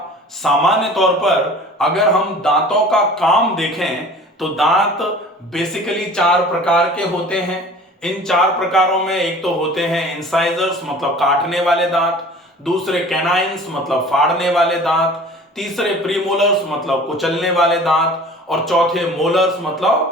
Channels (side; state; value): both; normal; correlation 0.44